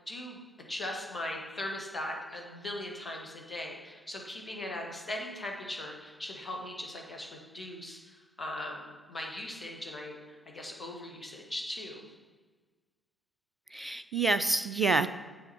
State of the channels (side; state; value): both; normal; correlation 0.73